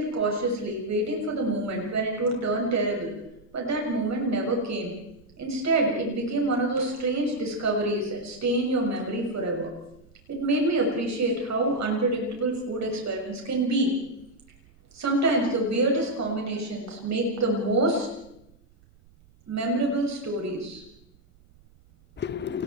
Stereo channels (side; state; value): right; noise; rumble, 28 dB below the sound